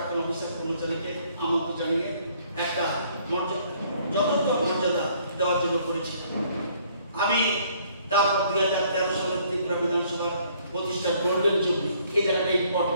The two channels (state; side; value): inverted; both; correlation -0.62